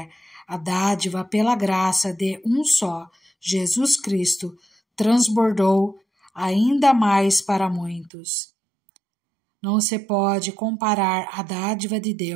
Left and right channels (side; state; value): left; drops out; at 8.1 s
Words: a dádiva pela graça de um só, Jesus Cristo, transbordou ainda mais para muitos. Não se pode comparar a dádiva de